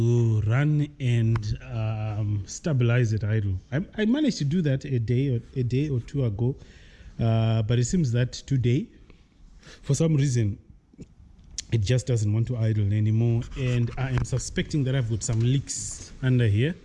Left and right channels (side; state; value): both; identical; correlation 1.00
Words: run and stabilize it idle. I managed to do that a day or two ago, but it seems that today for some reason it just doesn't want to idle anymore, and I am suspecting that I've got some leaks under here